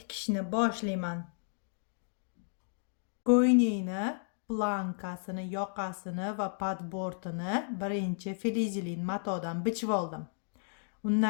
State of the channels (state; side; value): silent; right; digital silence